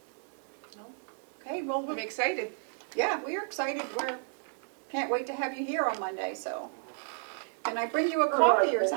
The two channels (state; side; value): silent; left; 56 dB below the other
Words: No? Okay, well, I'm excited. yeah, we are excited. Can't wait to have you here on Monday, so. Can I bring you a coffee or